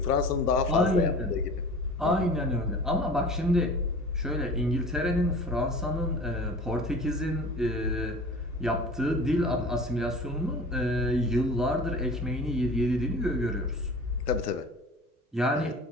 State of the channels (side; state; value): both; normal; correlation 0.40